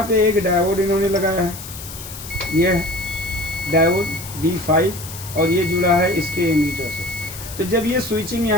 पे एक डायोड इन्होंने लगाया है, ये है डायोड D5, और ये जुड़ा है इसके एमीटर से। तो जब ये स्विचिंग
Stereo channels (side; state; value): left; noise; hiss, 12 dB below the sound